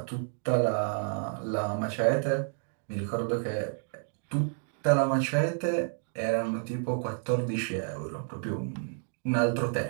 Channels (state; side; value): silent; left; 58 dB below the other